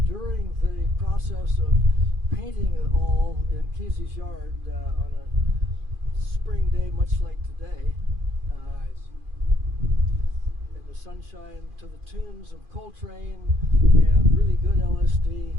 during the process of painting it all in Kesey's yard on a spring day, much like today, in the sunshine, to the tunes of Coltrane and really good LSD,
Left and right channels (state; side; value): late; left; 2.4 ms